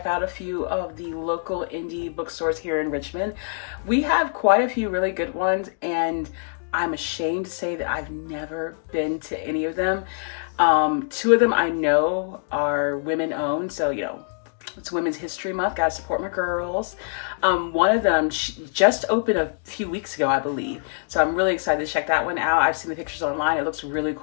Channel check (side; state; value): right; silent; digital silence